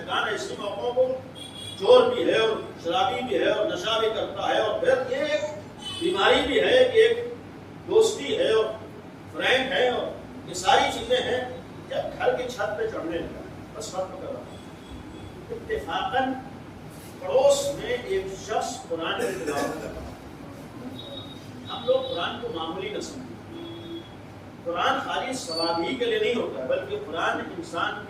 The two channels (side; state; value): both; identical; correlation 1.00